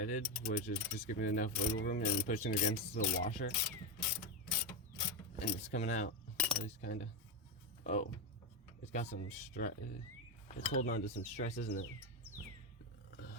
which is just giving it enough wiggle room and pushing against the washer. And it's coming out. At least kinda. Oh. It's got some stress. It's holding on to some stress, isn't it?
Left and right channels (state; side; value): normal; both; correlation 0.10